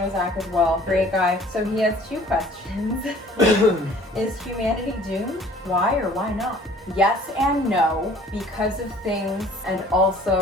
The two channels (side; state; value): both; normal; correlation 0.52